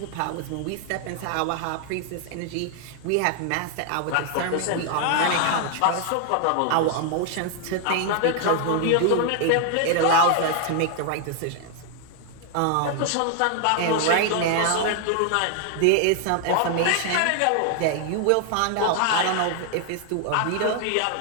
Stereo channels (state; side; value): different; both; correlation 0.00